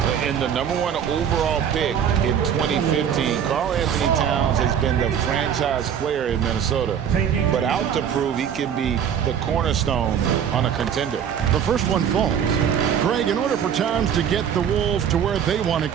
In the #1 overall pick in 2015, Karl-Anthony Towns has been the franchise player in Minnesota, but out to prove he can be the cornerstone on a contender. The first one falls. Greg, in order for Towns to get the Wolves to where they want to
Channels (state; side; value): quieter; left; 8.5 dB